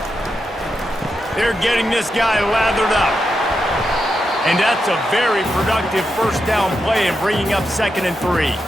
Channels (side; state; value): both; normal; correlation 0.86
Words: They're getting this guy lathered up. And that's a very productive first down play and bringing up 2nd and 3.